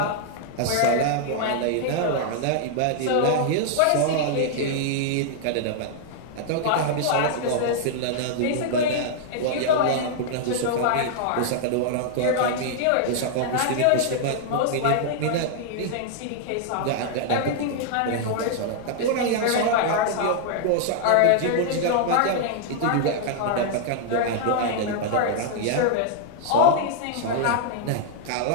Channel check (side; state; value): both; different; correlation -0.01